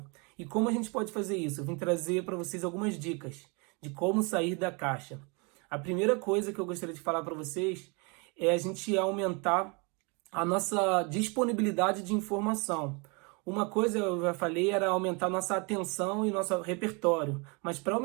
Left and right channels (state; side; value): quieter; left; 31.3 dB